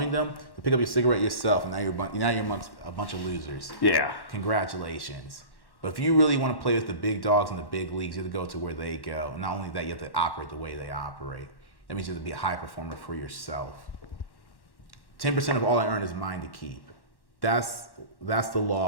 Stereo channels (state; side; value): late; right; 1.1 ms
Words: them, to pick up your cigarette yourself, and now you're amongst a bunch of losers. Yeah. Congratulations. But if you really want to play with the big dogs in the big leagues, you have to go to where they go. And not only that, you have to operate the way they operate. That means you have to be a high performer for yourself. 10% of all I earn is mine to keep. That's the